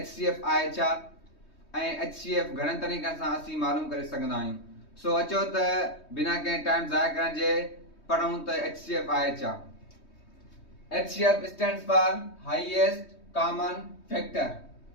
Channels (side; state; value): right; late; 3.2 ms